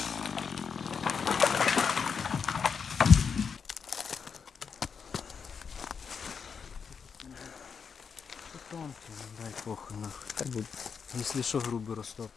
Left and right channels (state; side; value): quieter; right; 6.2 dB